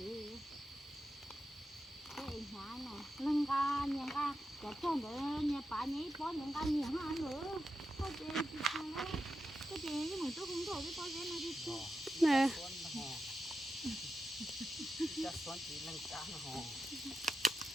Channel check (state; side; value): normal; both; correlation 0.88